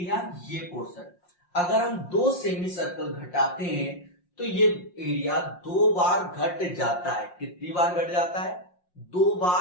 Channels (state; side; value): late; right; 5.6 ms